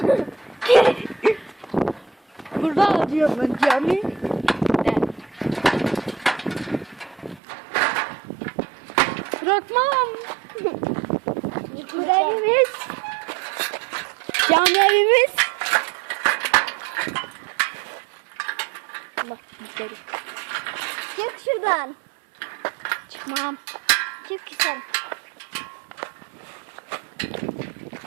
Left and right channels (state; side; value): drops out; left; at 7.4 s